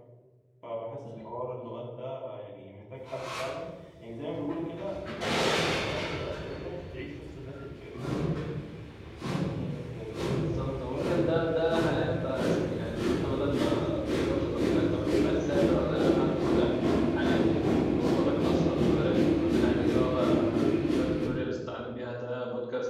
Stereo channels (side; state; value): both; identical; correlation 1.00